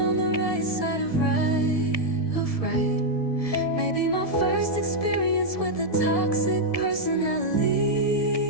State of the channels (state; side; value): late; right; 1.7 ms